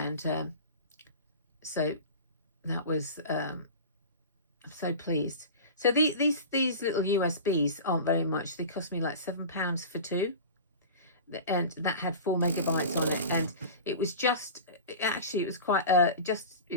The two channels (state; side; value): inverted; both; correlation -0.34